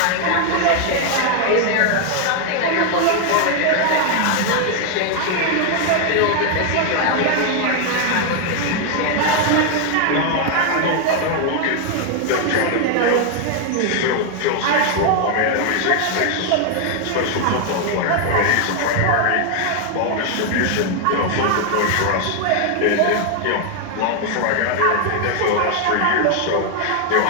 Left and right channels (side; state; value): both; different; correlation 0.00